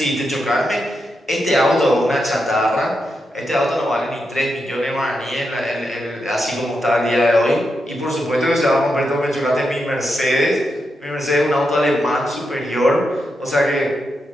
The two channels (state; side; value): normal; both; correlation 0.85